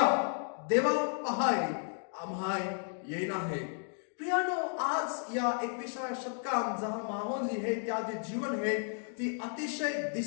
देवा पहाय आम्हाय येईन आहे. प्रियानो, आज या 21व्या शतकात जहां माहोल जी है त्या जे जीवन है ती अतिशय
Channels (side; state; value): right; silent; 56 dB below the other